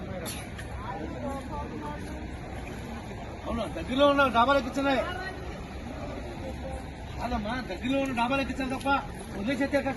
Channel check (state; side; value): identical; both; correlation 1.00